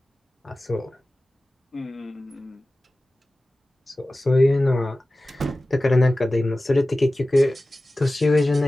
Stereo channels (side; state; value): both; normal; correlation 0.96